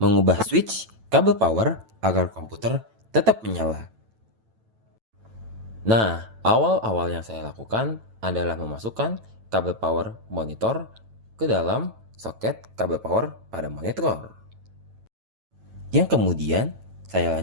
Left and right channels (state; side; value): late; left; 9.0 ms